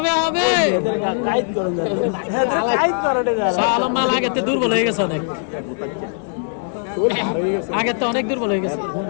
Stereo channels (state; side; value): silent; right; 66 dB below the other